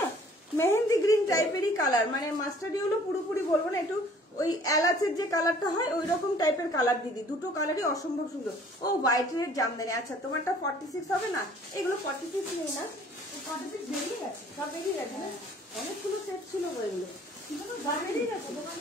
না মেহেন্দি গ্রিন টাইপেরই কালার, মানে মাস্টার্ড ইয়েলো পুরোপুরি বলবো না, একটু ওই এলাচের যে কালারটা হয় ওই রকম টাইপের কালার দিদি। দুটো কালারই অসম্ভব সুন্দর। ও হোয়াইট রেড জামদানি। আচ্ছা তোমারটা 46 হবে না? এগুলো 46 নেই না, 46 বেরিয়ে গেছে, সব বেরিয়ে গেছে না, অনেকগুলো সেট ছিল এগুলো, শুধু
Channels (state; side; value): normal; both; correlation 0.55